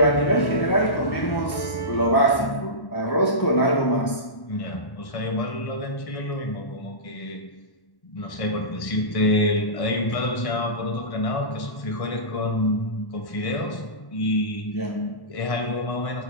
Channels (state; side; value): late; right; 1.1 ms